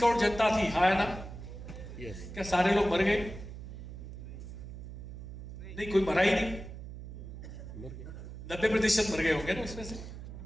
जनता थी, हाँ है ना? क्या सारे लोग मर गए? नहीं, कोई मरा ही नहीं। 90% मर गए होंगे ना उसमें से।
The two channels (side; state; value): right; noise; hum, 11 dB below the sound